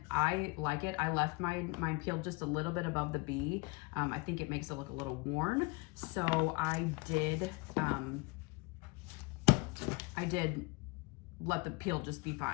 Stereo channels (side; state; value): right; quieter; 26.4 dB